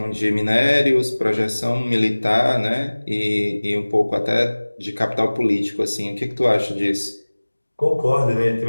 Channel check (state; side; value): inverted; both; correlation -1.00